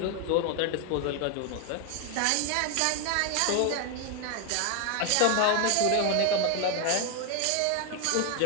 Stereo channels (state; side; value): different; both; correlation 0.01